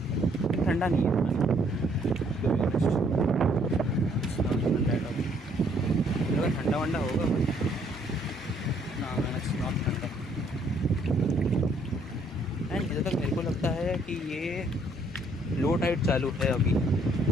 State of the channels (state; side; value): normal; both; correlation 0.66